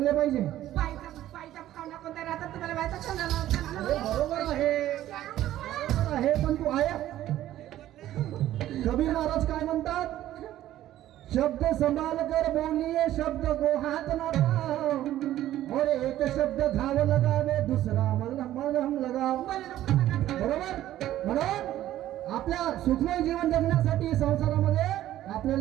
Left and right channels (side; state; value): left; quieter; 13.4 dB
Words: पाहिजे. पायचा भावना कोणत्या राहतात तुम्हाला माहिती आहे? बरोबर आहे, पण तू आहे. कबीर महाराज काय म्हणतात? शब्द संभाल कर बोलिए, शब्द को हाथ न लगाओ, और एक शब्द घाव लगावे, दुसरा मलहम लगाओ. बरोबर. म्हणून आपल्या सुखमय जीवन जगण्यासाठी संसारामध्ये